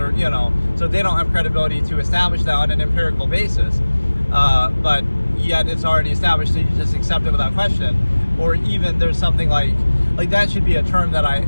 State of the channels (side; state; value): both; inverted; correlation -1.00